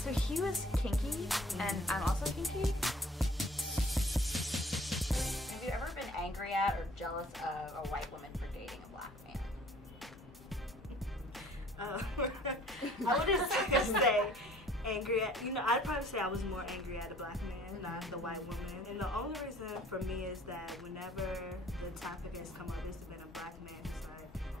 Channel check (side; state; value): both; normal; correlation 0.54